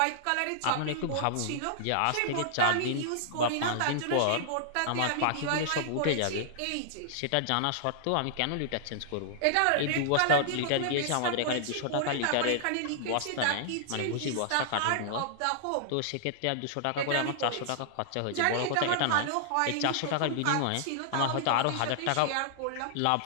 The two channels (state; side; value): different; both; correlation -0.01